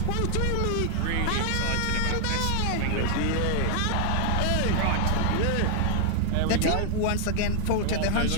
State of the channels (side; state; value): both; different; correlation 0.00